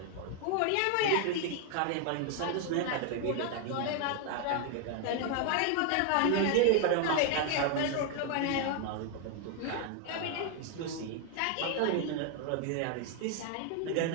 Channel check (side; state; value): both; different; correlation 0.00